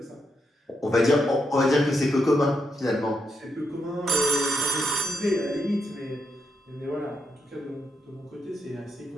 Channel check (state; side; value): normal; both; correlation 0.82